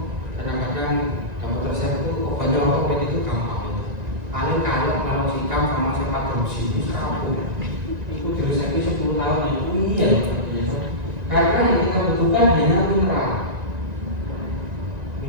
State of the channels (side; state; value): left; late; 1.9 ms